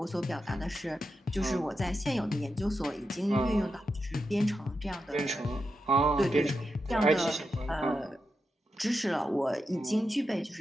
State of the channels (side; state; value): both; normal; correlation 0.87